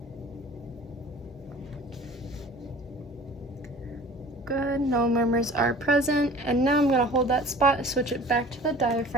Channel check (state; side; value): normal; both; correlation 0.45